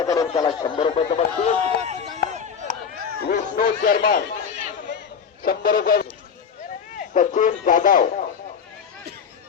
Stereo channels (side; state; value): right; quieter; 6.7 dB